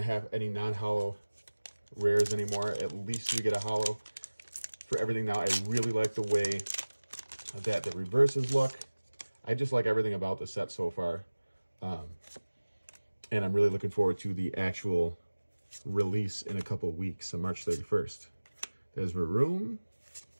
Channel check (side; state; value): both; inverted; correlation -1.00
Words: to have any non-hollow rares anymore. At least we get a hollow for everything now. I really like the way that the reverses look. I just like everything about the set so far. And I'm really looking forward to the actual release in a couple weeks on March 31st. There's Varoom,